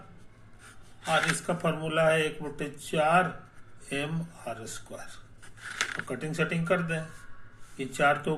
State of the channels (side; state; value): both; identical; correlation 1.00